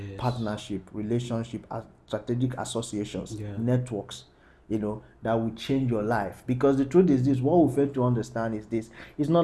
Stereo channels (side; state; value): both; identical; correlation 1.00